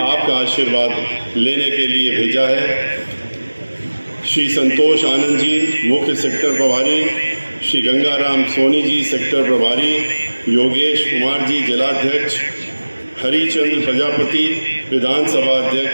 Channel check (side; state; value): both; inverted; correlation -1.00